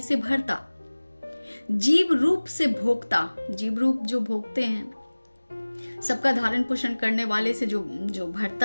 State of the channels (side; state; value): both; inverted; correlation -1.00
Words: से भरता, जीव रूप से भोक्ता, जीव रूप जो भोगते हैं, सबका धारण पोषण करने वाले से जो